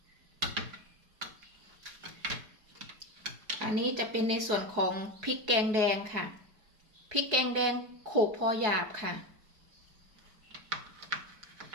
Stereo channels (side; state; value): left; late; 4.7 ms